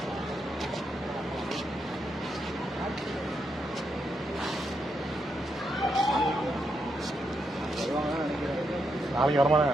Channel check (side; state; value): both; normal; correlation 0.81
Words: நாளைக்கு வரமா தான்